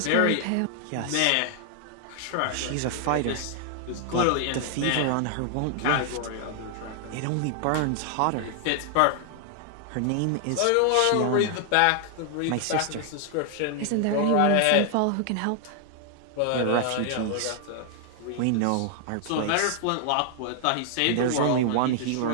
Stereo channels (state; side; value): different; both; correlation 0.00